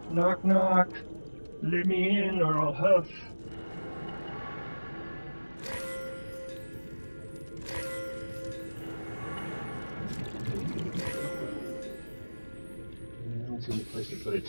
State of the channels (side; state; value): both; inverted; correlation -1.00